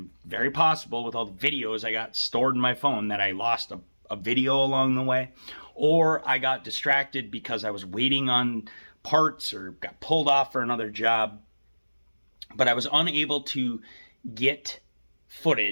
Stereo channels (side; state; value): both; inverted; correlation -1.00